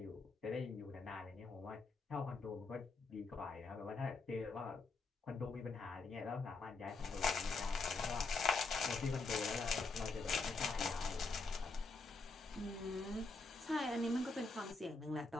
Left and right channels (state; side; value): quieter; right; 3.7 dB